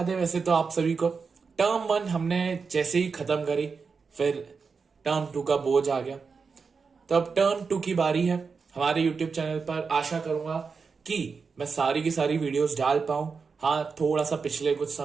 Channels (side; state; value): left; quieter; 5.2 dB